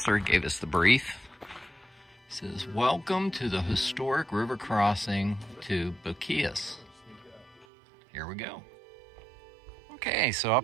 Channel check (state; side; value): drops out; left; at 7.7 s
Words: gave us the brief. It says, "Welcome to the historic river crossing to Boquillas." Here we go. Okay, so